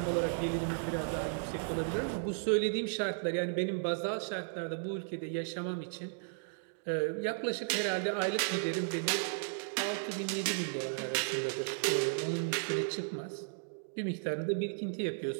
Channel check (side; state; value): left; silent; digital silence